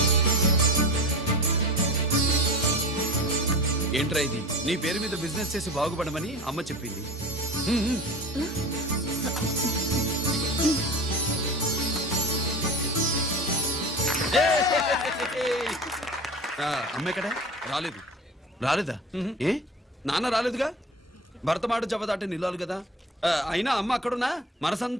ఏంట్రా ఇది? నీ పేరు మీద బిజినెస్ చేసి బాగుపడమని అమ్మ చెప్పింది. అమ్మ ఎక్కడా? రాలేదా? ఏ నాన్న రాలేదుగా? భర్త మాట జవదాటే నిల్లాలి కదా. అయినా అమ్మ అక్కడున్నా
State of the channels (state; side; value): normal; both; correlation 0.32